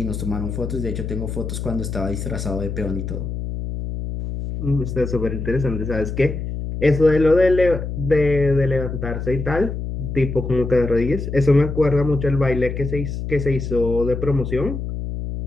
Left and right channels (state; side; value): noise; left; hum, 5 dB below the sound